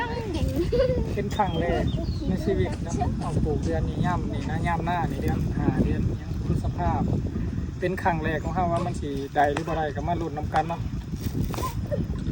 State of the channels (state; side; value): identical; both; correlation 1.00